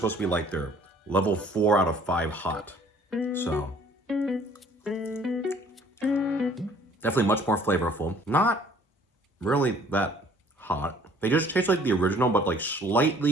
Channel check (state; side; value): normal; both; correlation 0.56